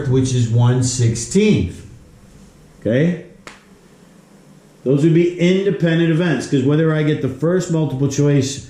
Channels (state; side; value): identical; both; correlation 1.00